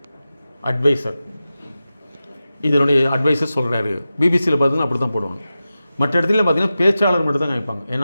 அட்வைசர், இதனுடைய அட்வைசர் சொல்கிறாரு. பிபிசியில் பார்த்தீங்கன்னா அப்படி தான் போடுவாங்க. மற்ற இடத்துல பார்த்தீங்கன்னா பேச்சாளர் மட்டும் தான் காமிப்பாங்க.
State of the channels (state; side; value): inverted; both; correlation -0.93